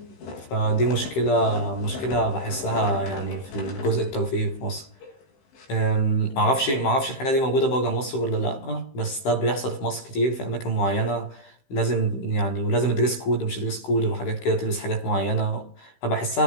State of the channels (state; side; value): late; right; 15 ms